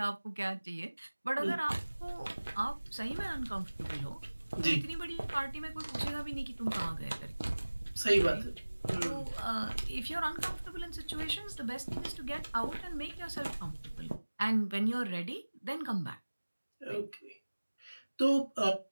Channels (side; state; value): both; inverted; correlation -1.00